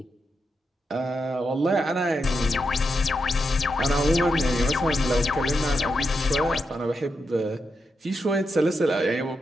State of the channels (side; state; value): both; normal; correlation 0.85